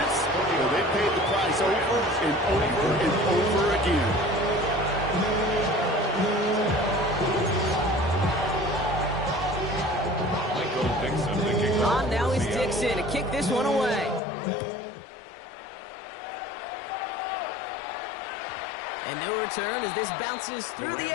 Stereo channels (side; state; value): right; drops out; at 14.2 s